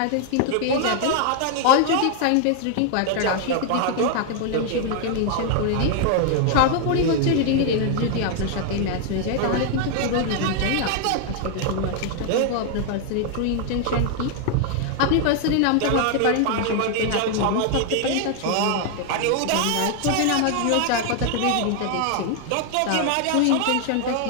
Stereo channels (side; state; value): both; different; correlation 0.00